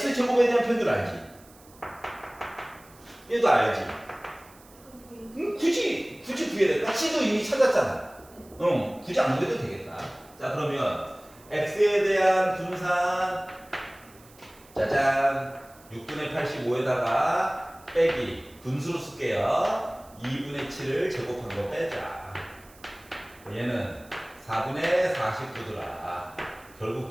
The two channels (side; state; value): right; noise; hiss, 25 dB below the sound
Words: 제곱에 대한 표현을 알지? 얘도 알지? 굳이 구해야 돼. C도 이미 찾았잖아. 굳이 안 구해도 되겠다. 자, 그러면 X에 대한 분산 짜잔 6분의 85에다가 빼기 분수로 쓸게요. 2분의 7을 제곱한 거 빼자. 얘는 4분의 49더라. 결국